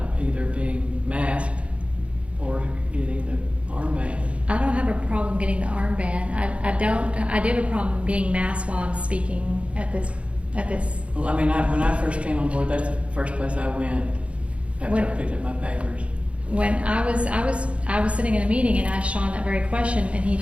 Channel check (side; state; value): left; late; 0.061 ms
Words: either being masked or getting the armband. I don't have a problem getting the armband. I do have a problem being masked while I'm speaking at this. Well, I mean, when I first came on board, that's the first place I went after I picked up my papers. When I was sitting in a meeting and asked Sean that very question, and he